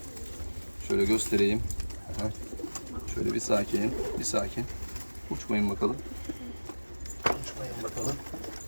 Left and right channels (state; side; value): inverted; both; correlation -1.00